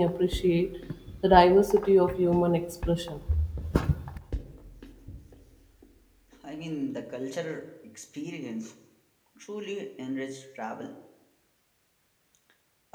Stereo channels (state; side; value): identical; both; correlation 1.00